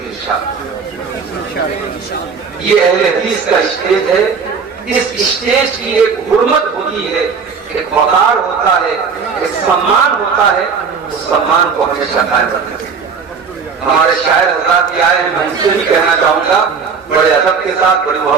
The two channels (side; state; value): left; quieter; 5.6 dB